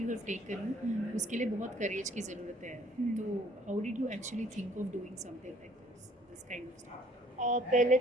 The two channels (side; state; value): both; normal; correlation 0.59